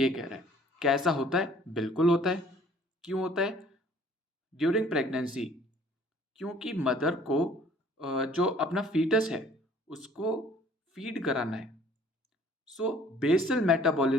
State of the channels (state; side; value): normal; both; correlation 0.55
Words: कह रहा है. कैसा होता है? बिल्कुल होता है. क्यों होता है? ड्यूरिंग प्रेगनेंसी क्योंकि मदर को जो अपना फीटस है उसको फीड कराना है. So basal